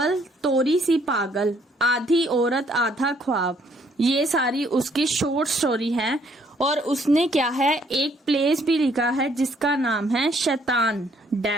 तोरी सी पागल, आधी औरत आधा ख्वाब। ये सारी उसकी शॉर्ट स्टोरी है। और उसने क्या है एक प्लेस भी लिखा है जिसका नाम है शैतान,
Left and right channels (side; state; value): both; normal; correlation 0.66